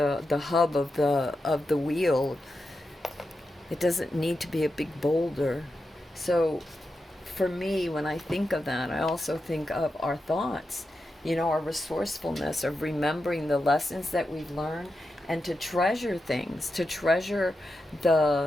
hub of the wheel. It doesn't need to be a big boulder. So for me, when I think of that, I also think of our thoughts, our resourcefulness of remembering the lessons that we've learned, and to treasure things, to treasure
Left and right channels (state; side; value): normal; both; correlation 0.89